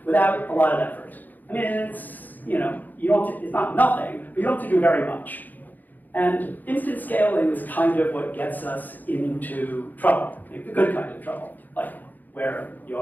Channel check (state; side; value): late; right; 0.084 ms